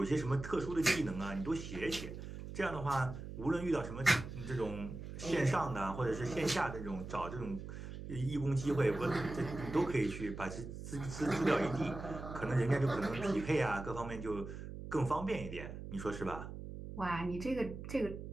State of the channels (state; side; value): noise; right; hum, 9 dB below the sound